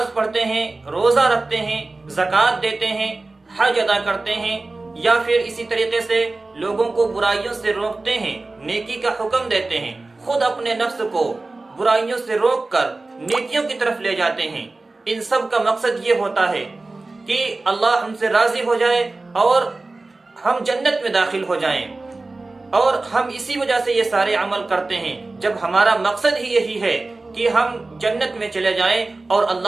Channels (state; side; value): quieter; left; 3.3 dB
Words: پڑھتے ہیں، روزہ رکھتے ہیں، زکوٰۃ دیتے ہیں، حج ادا کرتے ہیں، یا پھر اسی طریقے سے لوگوں کو برائیوں سے روکتے ہیں، نیکی کا حکم دیتے ہیں، خود اپنے نفس کو برائیوں سے روک کر نیکیوں کی طرف لے جاتے ہیں۔ ان سب کا مقصد یہ ہوتا ہے کہ اللہ ہم سے راضی ہو جائے اور ہم جنت میں داخل ہو جائیں، اور ہم اسی وجہ سے یہ سارے عمل کرتے ہیں۔ جب ہمارا مقصد ہی یہی ہے کہ ہم جنت میں چلے جائیں اور